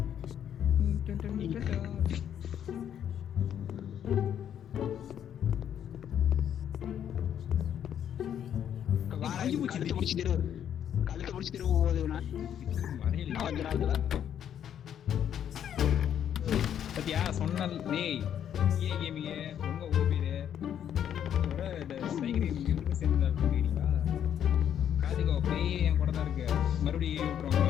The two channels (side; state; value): right; quieter; 9.5 dB